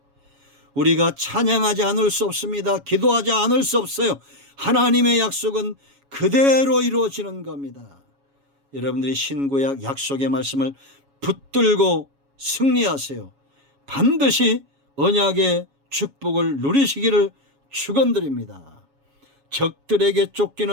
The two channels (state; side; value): late; left; 7.2 ms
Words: 우리가 찬양하지 않을 수 없습니다. 기도하지 않을 수 없어요. 하나님의 약속은 그대로 이루어지는 겁니다. 여러분들이 신구약 약속의 말씀을 붙들고 승리하세요. 반드시 언약의 축복을 누리시기를 축원드립니다. 적들에게